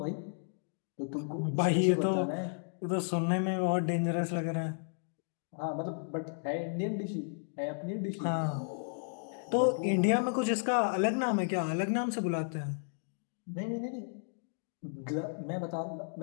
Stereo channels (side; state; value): right; silent; digital silence